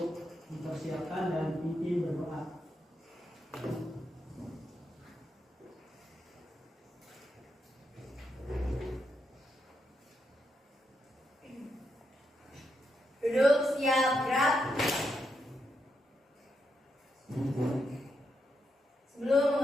mempersiapkan dan pimpin berdoa. Duduk, siap, gerak. Sebelum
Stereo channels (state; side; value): normal; both; correlation 0.82